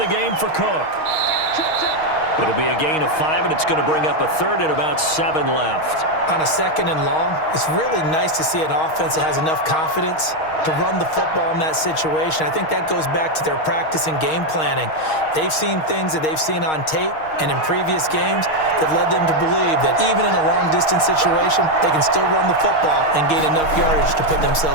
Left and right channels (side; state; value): right; late; 6.4 ms